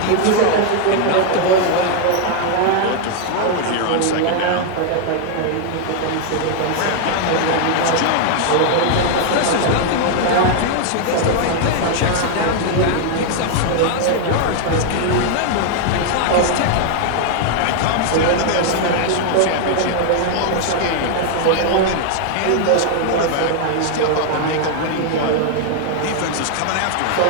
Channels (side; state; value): both; different; correlation 0.00